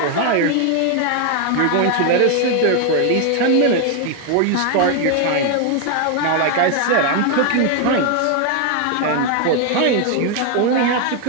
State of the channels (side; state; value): both; different; correlation 0.01